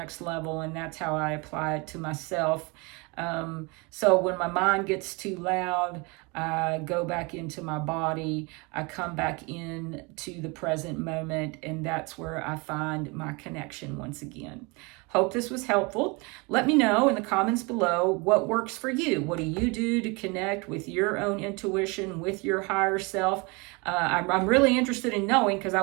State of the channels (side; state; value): left; quieter; 28.5 dB